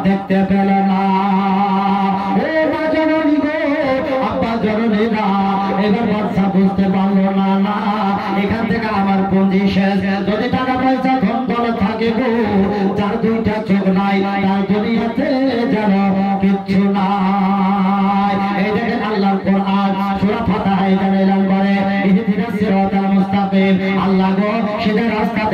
দেখতে পেল না। ও মা জননী গো, আব্বা জননী না, এবার বাচ্চা বুঝতে পারলো না, না এখান থেকে আমার পুঁজি শেষ। যদি টাকা পয়সা ধন দৌলত থাকে গো, যার দুইটা চোখ নাই তার দুনিয়াতে যেন কিচ্ছু নাই। এই দেখেন আল্লাহর কোরআন সূরা ফাতিহা এখানে এলান করে, ইহদিনাস সিরাতাল মুস্তাকিম, আল্লাহ গো সিধা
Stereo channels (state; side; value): identical; both; correlation 1.00